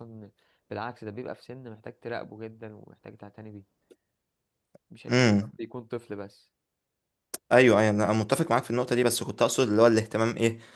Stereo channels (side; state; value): both; identical; correlation 1.00